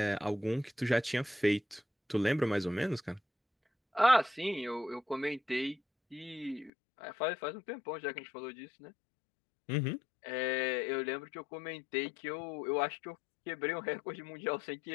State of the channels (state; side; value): drops out; right; at 6.7 s